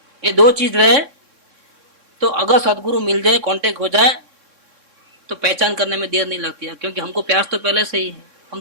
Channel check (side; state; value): left; late; 3.6 ms